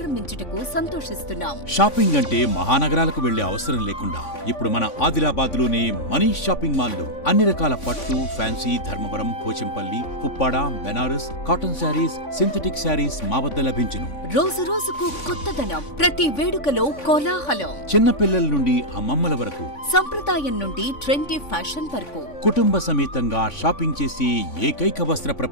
సంతోషిస్తున్నాం. షాపింగ్ అంటే మహానగరాలకు వెళ్లే అవసరం లేకుండా ఇప్పుడు మన ఆదిలాబాద్ లోనే మనీష్ షాపింగ్ మాల్ లో అన్ని రకాల పట్టు, fancy, Dharmavaram, Pochampally, Puppada, Banaras, cotton sarees, synthetic sarees మా వద్ద లభించును. రోజు రోజుకు కొత్తదనం, ప్రతి వేడుకలో కోలాహలం. చిన్న పిల్లల నుండి అమ్మమ్మల వరకు, సంప్రదాయం నుండి ట్రెండీ ఫ్యాషన్ వరకు కుటుంబ సమేతంగా షాపింగ్ చేసి ఏకైక వస్త్ర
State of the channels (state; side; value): late; right; 3.5 ms